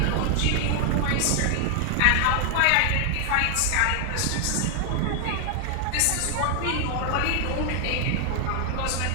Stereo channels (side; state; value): both; different; correlation 0.00